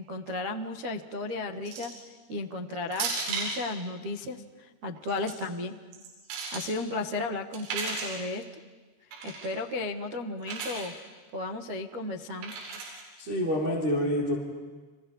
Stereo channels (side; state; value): left; late; 13 ms